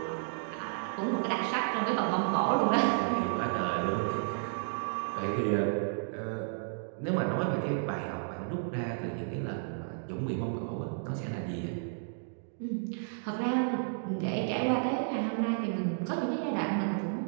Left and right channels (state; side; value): silent; left; digital silence